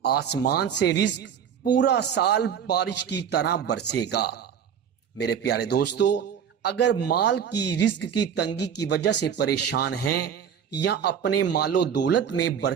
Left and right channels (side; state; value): left; quieter; 8.1 dB